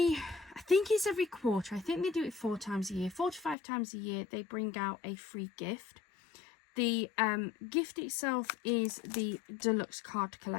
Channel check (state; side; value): drops out; right; at 3.6 s